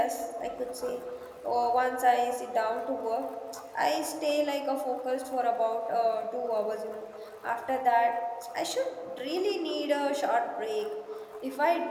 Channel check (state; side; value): identical; both; correlation 1.00